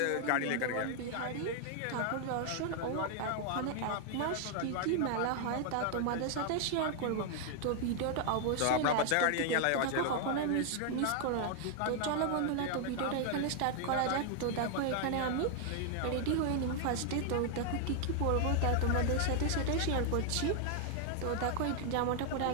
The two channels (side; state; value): both; different; correlation 0.00